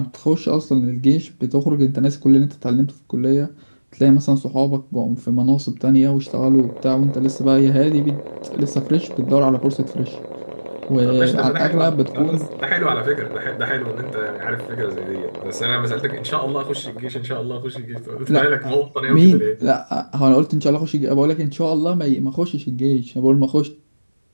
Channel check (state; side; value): inverted; both; correlation -1.00